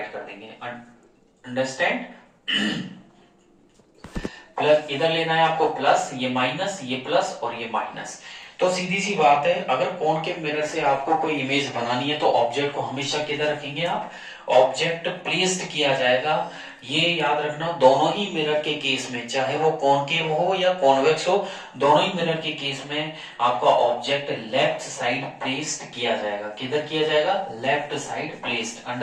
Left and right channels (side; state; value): both; identical; correlation 1.00